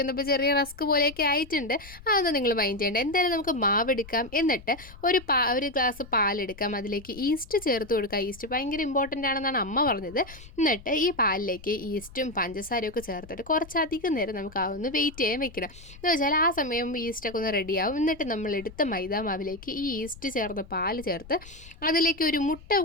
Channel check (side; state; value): left; noise; rumble, 19 dB below the sound